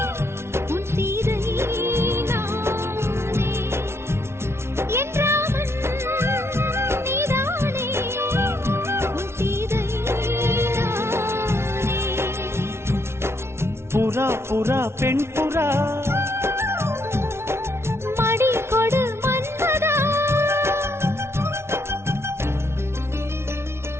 உன் சீதை நானே என் ராமன் நீதானே உன் சீதை நானே புறா புறா பெண் புறா மடி கொடு மன்மதா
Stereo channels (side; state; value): left; late; 0.12 ms